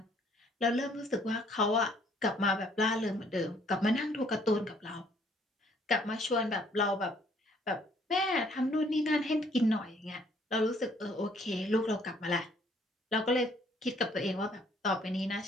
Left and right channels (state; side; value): normal; both; correlation 0.63